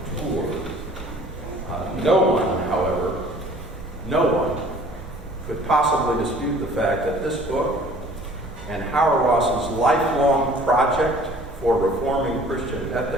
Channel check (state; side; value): normal; both; correlation 0.51